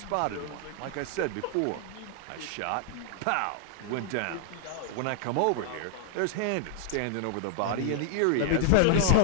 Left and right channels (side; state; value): both; different; correlation -0.01